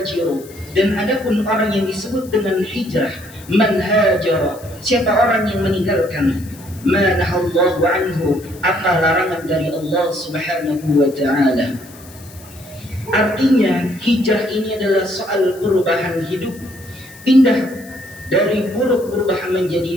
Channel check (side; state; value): left; noise; hiss, 21 dB below the sound